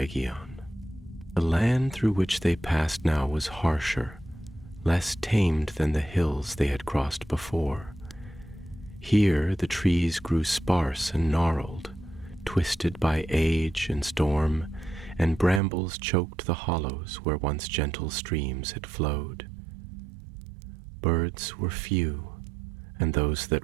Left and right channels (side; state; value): left; drops out; at 15.6 s